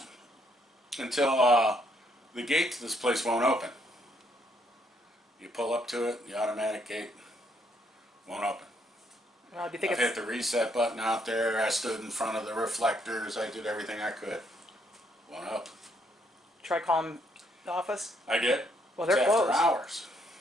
Until the gate to this place won't open. You pull up to it, the automatic gate won't open. Well, do you think I've hit the reset button out there. I stood in front of the reflectors. I did everything I could. Won't open. Try calling the office? I did. Well, they're It's closed. after hours.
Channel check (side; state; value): both; normal; correlation 0.71